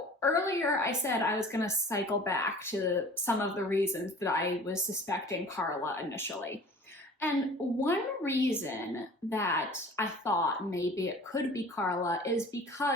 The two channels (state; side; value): normal; both; correlation 0.45